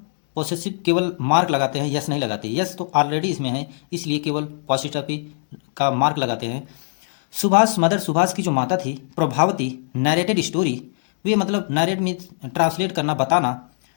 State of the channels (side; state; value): right; silent; 65 dB below the other